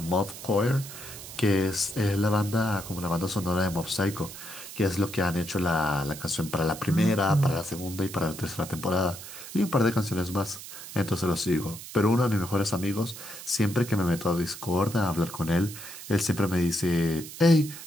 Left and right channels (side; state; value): right; noise; hiss, 12 dB below the sound